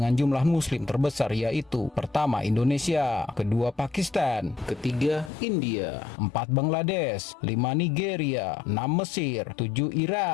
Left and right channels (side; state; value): right; drops out; at 5.3 s